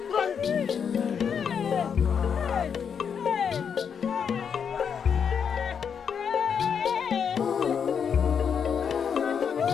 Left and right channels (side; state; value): right; quieter; 7.1 dB